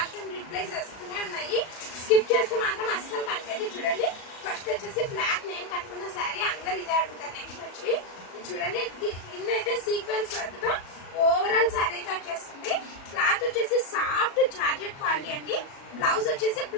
అండ్ రిప్లైస్ వస్తూనే ఉన్నాయి. స్కిప్ చేస్తే మాత్రం అస్సలు కనిపించదు. చూడండి, ఫస్ట్ వచ్చేసి బ్లాక్ నేను కట్టుకున్న శారీ. అందరు ఇదే అడుగుతారు. నెక్స్ట్ వచ్చి చూడండి, కింద అయితే సీక్వెన్స్ వర్క్ తో ఓవరాల్ శారీ అయితే వచ్చేస్తుంది. క్లాత్ వచ్చేసి సాఫ్ట్ జార్జెట్ క్వాలిటీ అండి. బ్లౌజ్ వచ్చేసి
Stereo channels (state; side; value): late; right; 37 ms